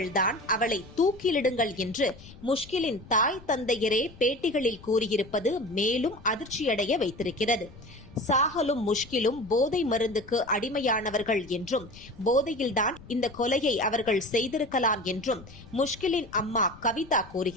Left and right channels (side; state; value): left; noise; rumble, 20 dB below the sound